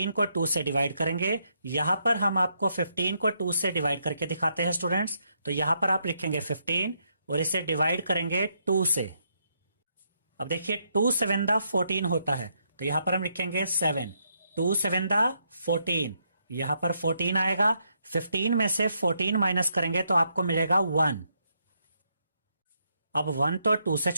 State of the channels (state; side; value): inverted; both; correlation -0.77